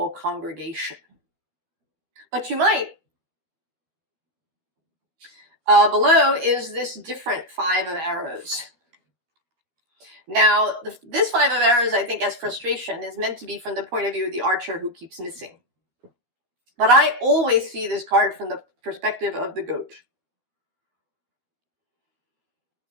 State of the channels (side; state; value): left; late; 13 ms